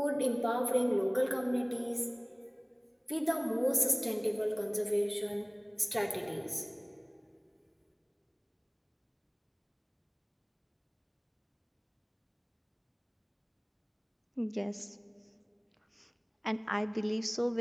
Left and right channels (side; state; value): both; identical; correlation 1.00